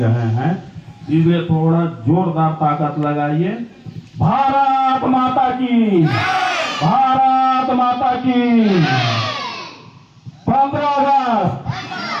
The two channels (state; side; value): identical; both; correlation 1.00